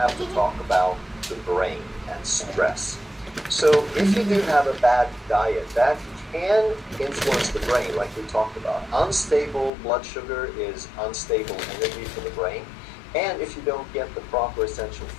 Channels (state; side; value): drops out; right; at 9.7 s